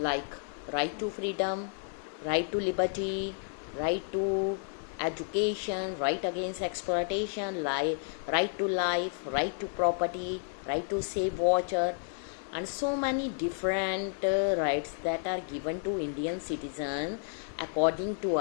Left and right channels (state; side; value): silent; right; digital silence